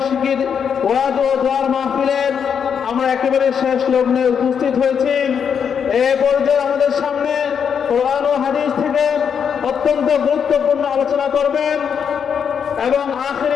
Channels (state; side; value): quieter; right; 7.3 dB